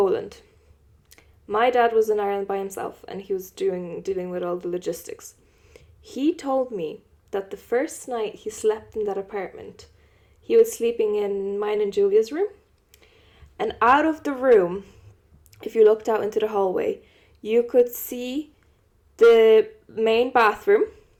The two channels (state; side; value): identical; both; correlation 1.00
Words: My dad was in Ireland by himself, and he was dealing with all the logistics. He told me that the first night he slept in that apartment, he was sleeping in mine and Julia's room. And out of the room, if you looked out into the hallway, you could see the main bathroom,